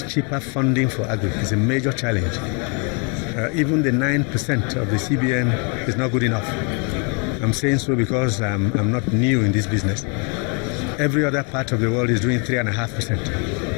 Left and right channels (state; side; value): quieter; right; 35.6 dB